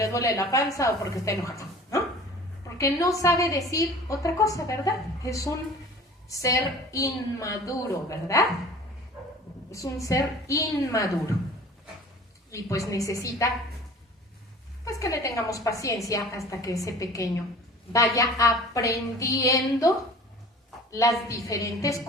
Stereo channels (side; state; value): both; normal; correlation 0.44